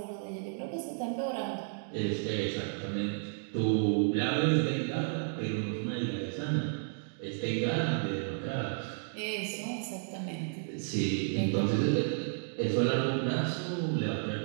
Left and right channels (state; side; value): silent; left; digital silence